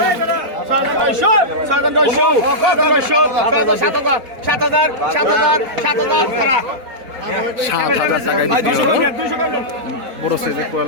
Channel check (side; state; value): left; late; 4.1 ms